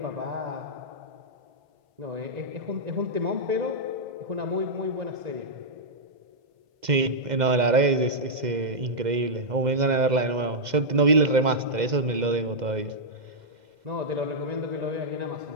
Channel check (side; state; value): left; late; 2.1 ms